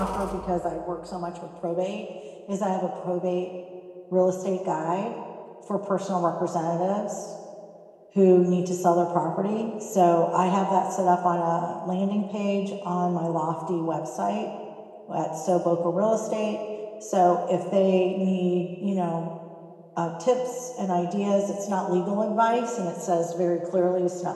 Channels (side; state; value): both; identical; correlation 1.00